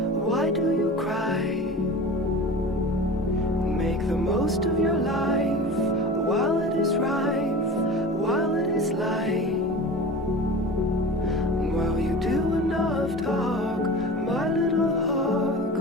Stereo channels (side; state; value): both; normal; correlation 0.34